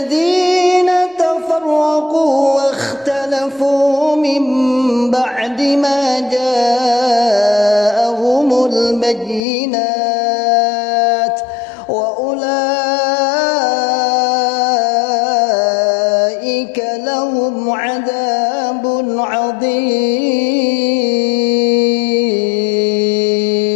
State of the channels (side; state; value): right; drops out; at 9.4 s